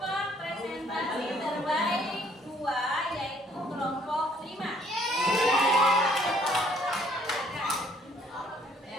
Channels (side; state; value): both; normal; correlation 0.62